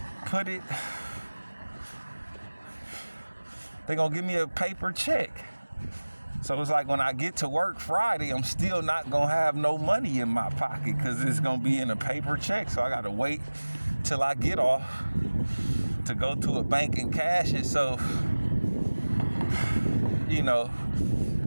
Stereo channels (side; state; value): both; inverted; correlation -1.00